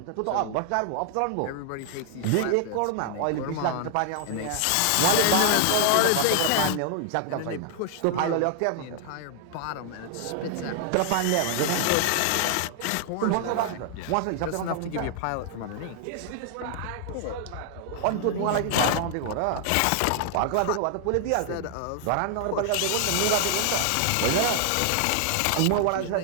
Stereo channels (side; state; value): both; different; correlation 0.00